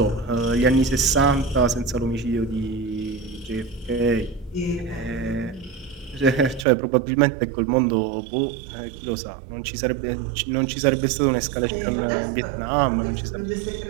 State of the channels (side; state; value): left; drops out; at 6.7 s